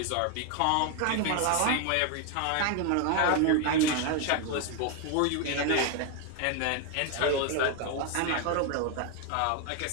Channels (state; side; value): different; both; correlation 0.01